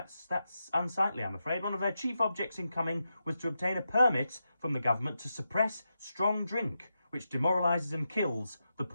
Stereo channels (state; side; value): inverted; both; correlation -0.88